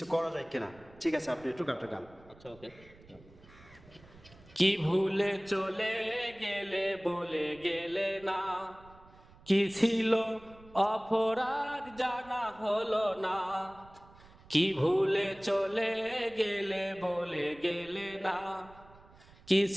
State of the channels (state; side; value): noise; right; rumble, 24 dB below the sound